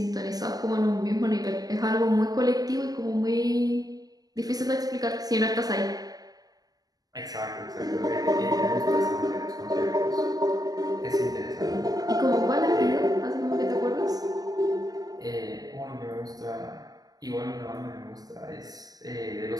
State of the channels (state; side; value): late; left; 0.18 ms